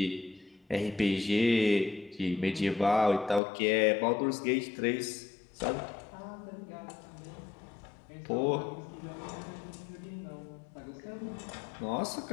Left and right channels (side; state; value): right; drops out; at 3.4 s